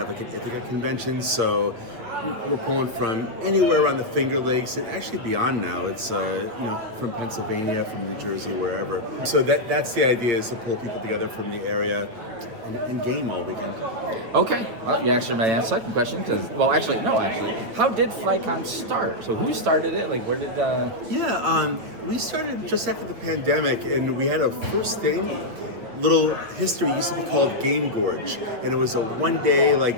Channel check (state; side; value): late; left; 8.6 ms